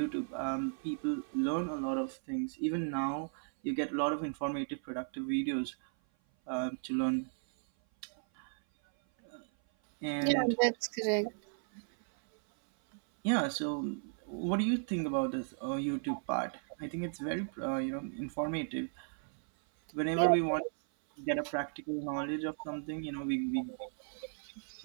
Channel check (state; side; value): silent; left; 54 dB below the other